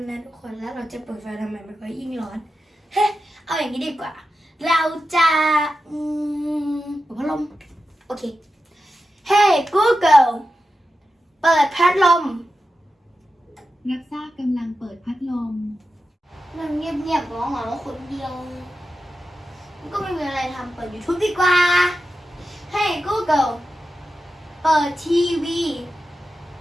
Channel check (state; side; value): normal; both; correlation 0.91